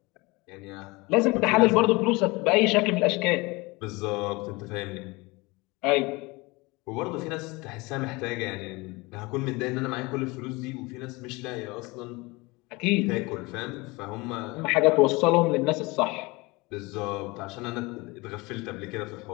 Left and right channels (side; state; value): right; quieter; 24.2 dB